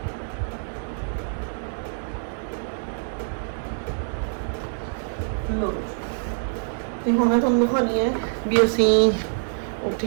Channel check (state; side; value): silent; left; digital silence